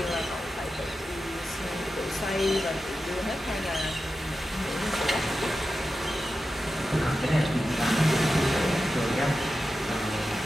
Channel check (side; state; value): both; normal; correlation 0.92